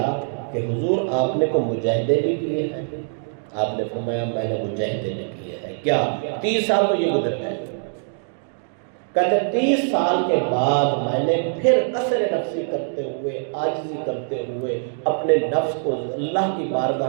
کہ حضور آپ نے کو مجاہدے بھی کیے ہیں؟ آپ نے فرمایا میں نے مجاہدے بھی کیے ہیں۔ کیا 30 سال تو یہ گزر گئے؟ کہتے 30 سال کے بعد میں نے پھر قصر نفسی کرتے ہوئے، عاجزی کرتے ہوئے، اپنے نفس کو اللہ کی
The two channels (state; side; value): silent; left; digital silence